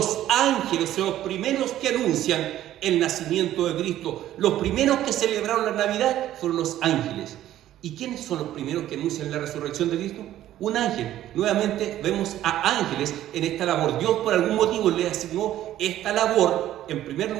ángeles son los primeros que anuncian el nacimiento de Cristo. Los primeros que celebraron la Navidad fueron los ángeles. ¿Y quiénes son los primeros que anuncian la resurrección de Cristo? Un ángel. Nuevamente vemos a ángeles en esta labor. Dios por algún motivo le asignó esta labor, en primer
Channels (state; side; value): quieter; left; 12.9 dB